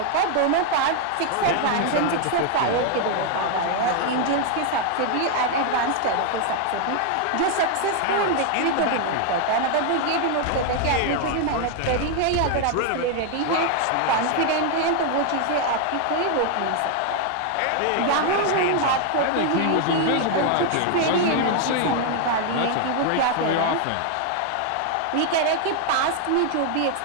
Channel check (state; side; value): different; both; correlation 0.00